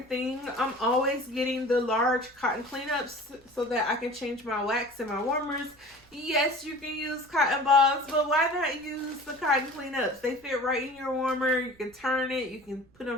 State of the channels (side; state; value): right; noise; rumble, 30 dB below the sound